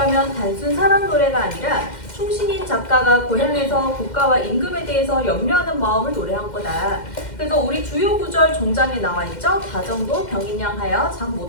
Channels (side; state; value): right; late; 2.1 ms